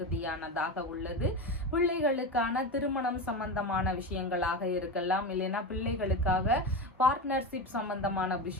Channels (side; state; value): both; normal; correlation 0.20